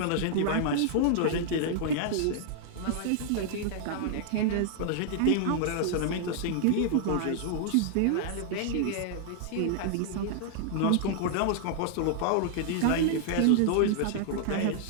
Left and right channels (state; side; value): different; both; correlation -0.01